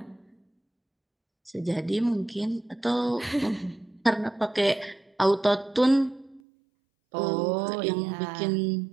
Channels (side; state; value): left; drops out; at 6.4 s